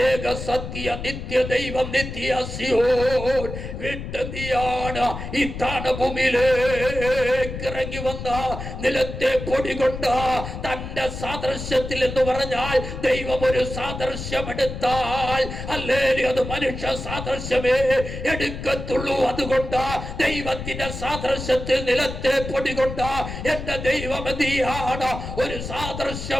ഏക സത്യ നിത്യ ദൈവം നിത്യ സിയോൻ വിട്ടെന്തിയാണ് ഈ താണഭൂമിയിലേക്ക് ഇറങ്ങി വന്ന നിലത്തെ പൊടി കൊണ്ട് തന്റെ സാദൃശ്യത്തിൽ എന്ന് പറഞ്ഞാൽ ദൈവം ഒരു സാദൃശ്യം എടുത്താൽ ഹല്ലേലൂയ അത് മനുഷ്യ സാദൃശ്യമേ എടുക്കത്തുള്ളൂ. അതുകൊണ്ട് ദൈവത്തിന്റെ സാദൃശ്യത്തിൽ നിലത്തെ പൊടി കൊണ്ട് എന്റെ ദൈവം എന്തിയാണ് ഒരു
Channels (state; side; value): noise; left; rumble, 8 dB below the sound